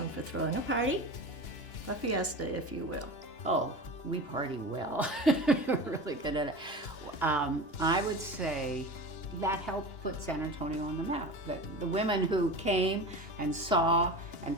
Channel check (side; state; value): right; late; 2.9 ms